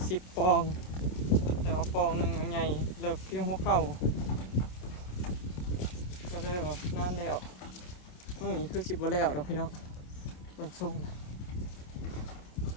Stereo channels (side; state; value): right; late; 27 ms